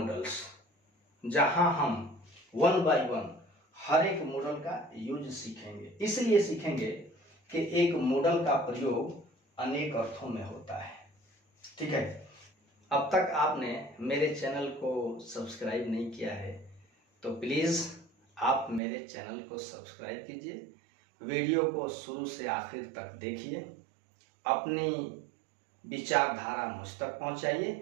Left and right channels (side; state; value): left; drops out; at 18.8 s